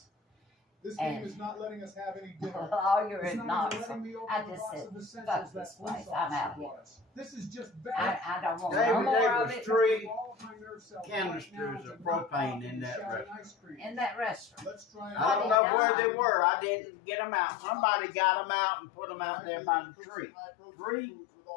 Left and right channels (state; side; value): drops out; right; at 15.6 s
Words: This game is not letting us have any dinner. lawyer and Knoxville. I just said, fuck this place. I'm out here. This is just I don't want no David, more there of was it 3 canisters of propane in that restaurant. in that restaurant. I don't know where they were. I didn't get them out. Somebody got them out and put them out there by the tree. 3?